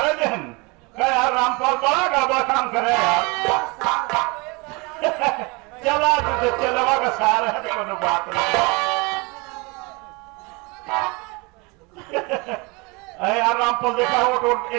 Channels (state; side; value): quieter; left; 27.7 dB